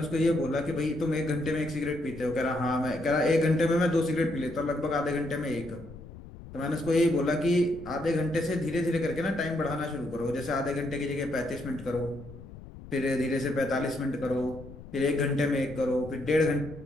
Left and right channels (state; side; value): noise; left; rumble, 16 dB below the sound